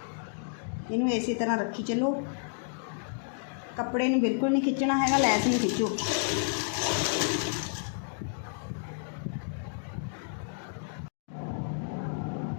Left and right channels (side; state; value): right; silent; digital silence